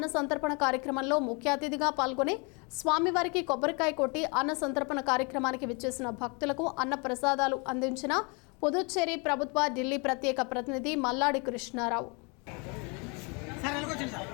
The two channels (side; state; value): right; quieter; 32.0 dB